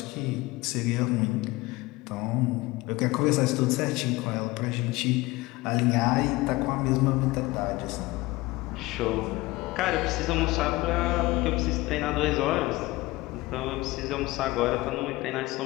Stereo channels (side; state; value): right; quieter; 20.5 dB